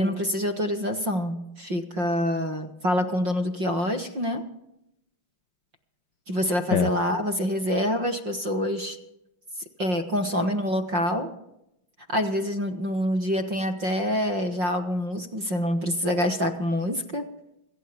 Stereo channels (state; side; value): late; left; 5.6 ms